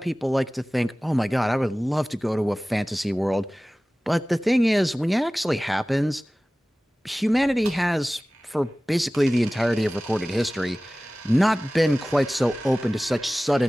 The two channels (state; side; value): normal; both; correlation 0.98